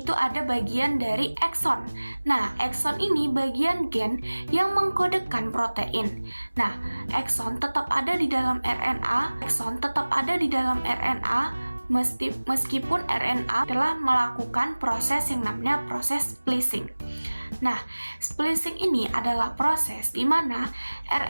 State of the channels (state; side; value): inverted; both; correlation -1.00